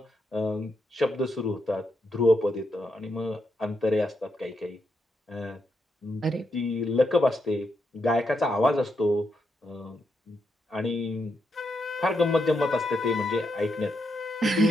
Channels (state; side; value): normal; both; correlation 0.81